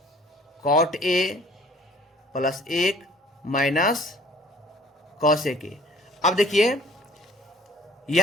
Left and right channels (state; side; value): normal; both; correlation 0.53